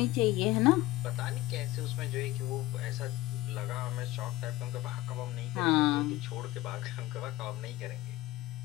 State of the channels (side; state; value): right; quieter; 17.4 dB